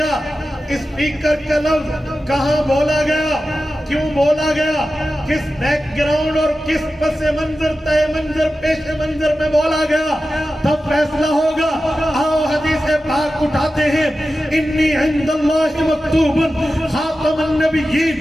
اسپیکر کا لفظ کہاں بولا گیا، کیوں بولا گیا، کس بیک گراؤنڈ اور کس پس منظر طے منظر پیش منظر میں بولا گیا، تب فیصلہ ہوگا۔ آؤ حدیث پاک اٹھاتے ہیں، انی عند اللہ مکتوب خاتم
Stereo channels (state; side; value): normal; both; correlation 0.93